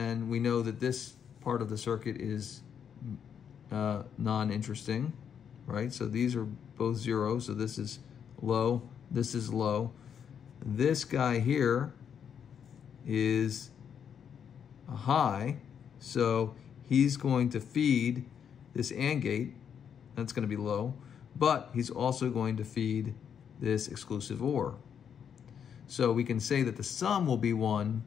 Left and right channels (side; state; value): right; quieter; 7.9 dB